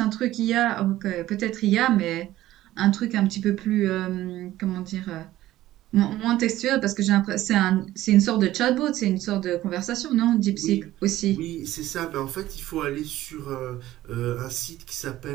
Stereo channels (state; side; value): quieter; left; 14.9 dB